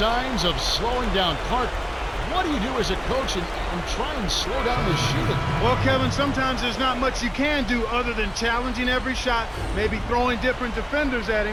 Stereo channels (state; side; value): identical; both; correlation 1.00